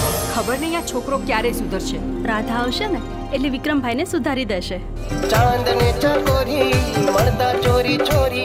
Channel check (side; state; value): both; identical; correlation 1.00